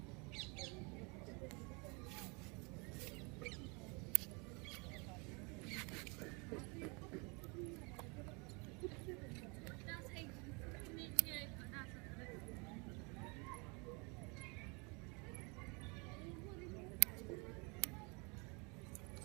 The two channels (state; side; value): quieter; left; 30.6 dB